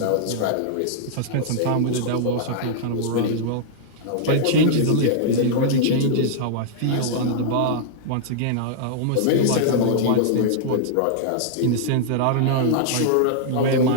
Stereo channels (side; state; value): both; different; correlation -0.01